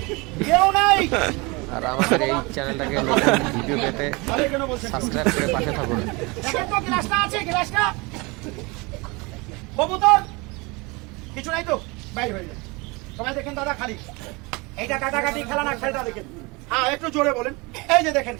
কেউ নাই। আর আমাদের এই চ্যানেলটাকে নতুন ভিডিও পেতে সাবস্ক্রাইব করে পাশে থাকুন। দেখেন তো গ্লাসটা আছে, গ্লাসটা কবুতর কিছু নাই তো, বাইরে হয়ে যায়। সবাই দেখেন দাদা, খালি এইটা কাটাকাটি খেলা না, খেলটা দেখেন। হ্যাঁ, একটু জোরে বলেন। এই যে দেখেন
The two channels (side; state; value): left; quieter; 26.4 dB